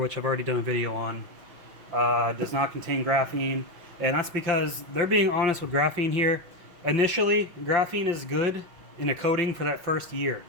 I've already done a video on, does not contain graphene. And that's because they're being honest with graphene here. Initially, graphene is good in a coating for that first year.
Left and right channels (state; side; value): late; left; 5.7 ms